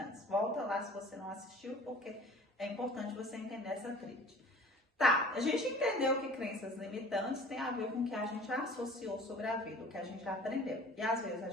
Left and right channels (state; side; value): normal; both; correlation 0.45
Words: Volta lá se você não assistiu, porque é importante você entender essa tríade. Tá, a gente entendeu que crenças limitantes tem a ver com o que a gente associou sobre a vida, o que a gente aprendeu. E às vezes a